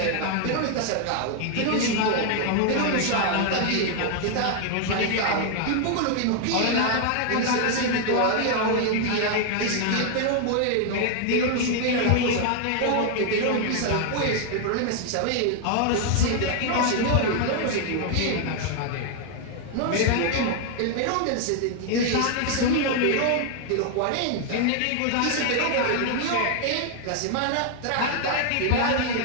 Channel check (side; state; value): both; different; correlation 0.00